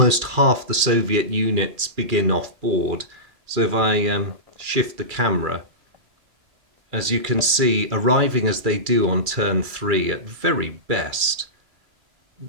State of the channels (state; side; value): late; left; 2.3 ms